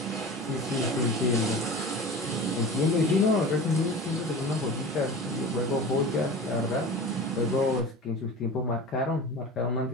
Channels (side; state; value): both; normal; correlation 0.34